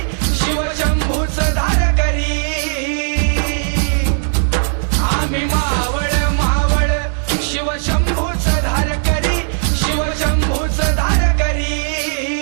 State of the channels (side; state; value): left; silent; digital silence